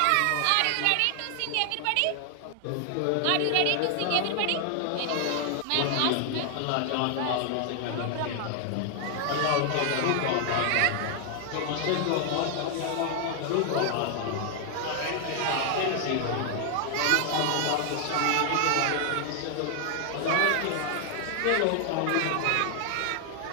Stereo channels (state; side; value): different; both; correlation 0.00